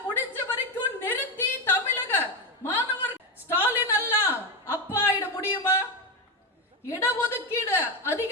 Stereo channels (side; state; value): both; normal; correlation 0.13